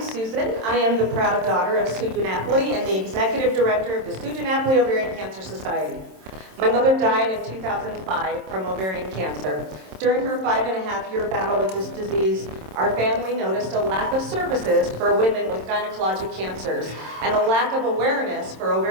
Susan. I am the proud daughter of Sue DiNapoli and the executive director of the Sue DiNapoli Ovarian Cancer Society. My mother died in 2005 from ovarian cancer. During her 5.5-year battle with this disease, our family noticed a lack of services for women with gynecologic cancers and a lack of awareness for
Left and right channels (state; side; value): late; left; 27 ms